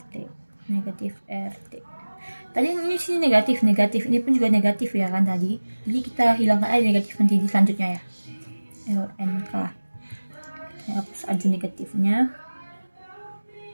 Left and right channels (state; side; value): inverted; both; correlation -1.00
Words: Tadi ini sini negatif, ini pun juga negatif ya kan tadi. Jadi kita hilangkan aja negatif nanti di selanjutnya ya. ln K. Saya hapus aja negatifnya.